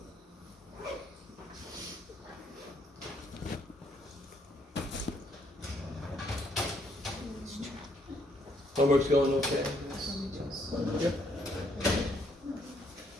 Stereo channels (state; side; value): normal; both; correlation 0.70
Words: Homework's going okay? Yep.